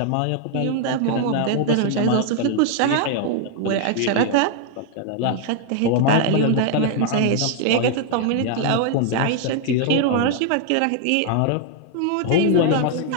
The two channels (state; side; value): different; both; correlation 0.00